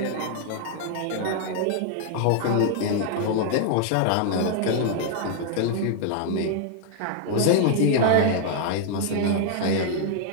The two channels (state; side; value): different; both; correlation 0.00